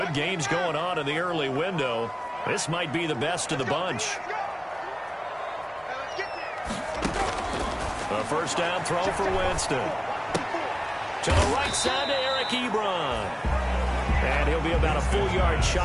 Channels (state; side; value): identical; both; correlation 1.00